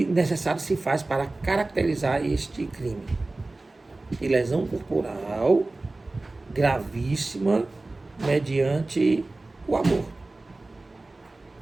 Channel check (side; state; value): left; quieter; 3.1 dB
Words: necessário se faz para caracterizar este crime. De lesão corporal gravíssima mediante o aborto.